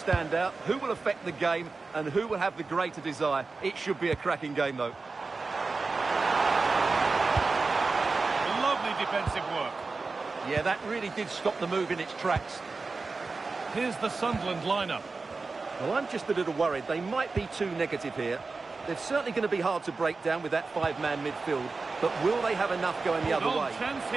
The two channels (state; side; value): quieter; left; 4.0 dB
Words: out, who will affect the game, and who will have the greater desire? It should be a cracking game, though. Lovely defensive work. Yeah, that really did stop the move in its tracks. Here's the Sunderland lineup. Well, I'm just a little worried. They might be too negative here. They're certainly going to be hard to break down with that five-man midfield, but will they have enough going the other way? Chance